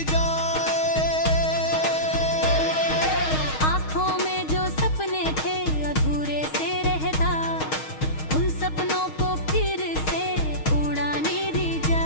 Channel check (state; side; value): late; right; 6.4 ms